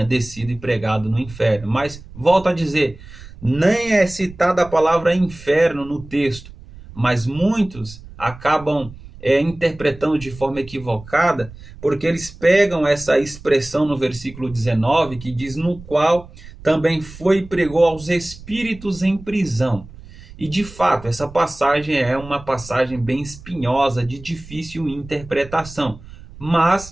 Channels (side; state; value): right; noise; rumble, 18 dB below the sound